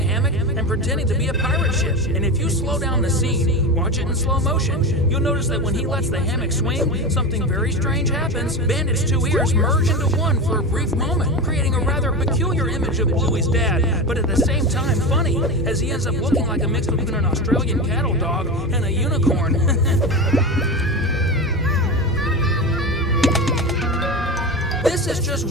and pretending to be a pirate ship. And if you slow down the scene, watch it in slow motion, you'll notice that when he lets the hammock swing, something very strange happens. Bandit's two ears merge into one for a brief moment, creating a rather peculiar image of Bluey's dad, but at the same time funny, as he ends up looking like a mix between an Australian cattle dog and a unicorn. This is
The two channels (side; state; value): both; normal; correlation 0.23